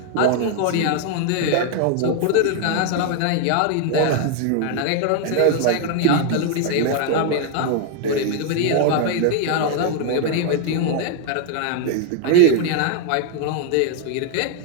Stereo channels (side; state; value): both; different; correlation 0.00